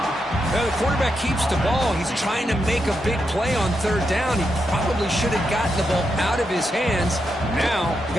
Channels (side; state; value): both; normal; correlation 0.84